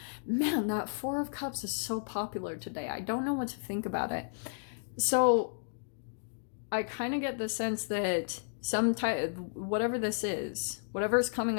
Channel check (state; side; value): silent; right; digital silence